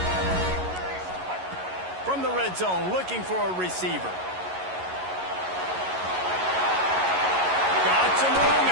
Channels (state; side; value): late; left; 11 ms